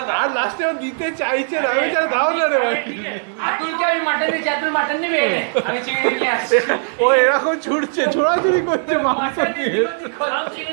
দাও। আর লাস্টে ও দিতে চাইছে না আমি চাই দাও না রে ভাই। আতুলকে আমি মাটন দিয়েছি আতুল মাটন নেবে আমি চিংড়ি নিয়ে আসছি ও এরকম ছুটছে ছোড়াছুড়ি করছে মাংস দিয়ে। हम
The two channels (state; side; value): silent; left; digital silence